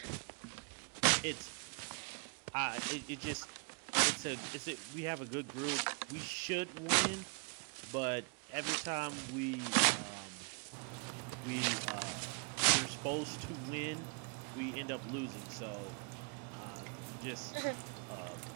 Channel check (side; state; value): left; quieter; 36.8 dB